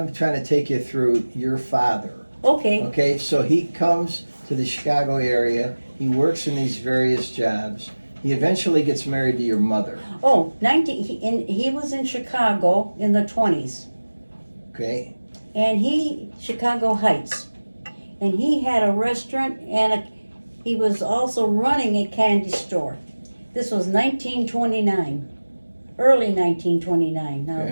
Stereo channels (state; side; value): inverted; both; correlation -1.00